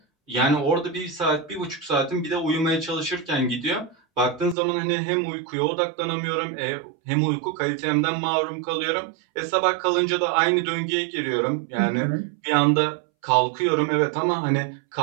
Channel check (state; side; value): drops out; left; at 4.5 s